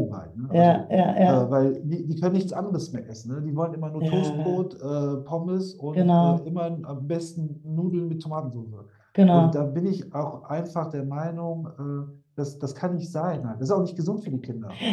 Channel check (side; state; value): both; identical; correlation 1.00